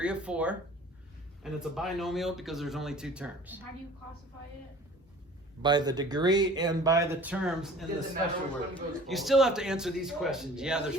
of 4, and it's a binomial because there's only 2 terms. And how do you classify it? by the degree and by the terms in the Doesn't matter special which one word. goes You forward. still have to answer these questions. Yeah, there's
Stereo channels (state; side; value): normal; both; correlation 0.46